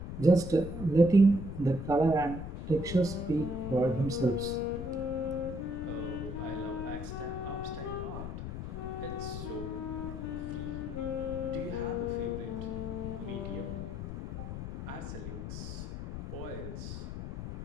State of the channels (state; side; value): noise; left; rumble, 7 dB below the sound